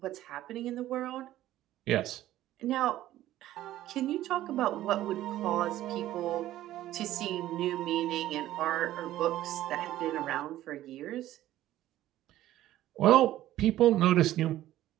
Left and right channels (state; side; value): quieter; left; 14.1 dB